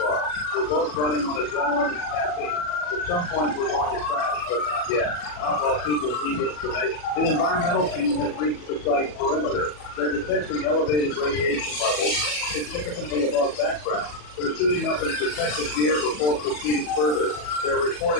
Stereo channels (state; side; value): late; right; 40 ms